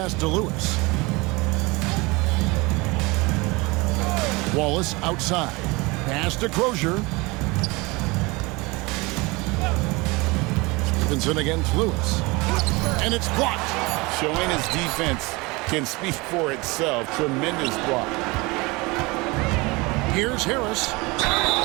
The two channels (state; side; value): quieter; left; 24.5 dB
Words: to Lewis. Wallace outside. Pass to Crozier. Stevenson against Lewis. And it's blocked. Showing his defense can speak for itself. Tremendous block. Here's Harris.